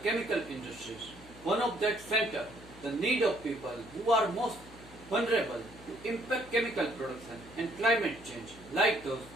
industries. One of that center the need of people who are most vulnerable to impact chemical production and climate change, like those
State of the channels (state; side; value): noise; left; hum, 21 dB below the sound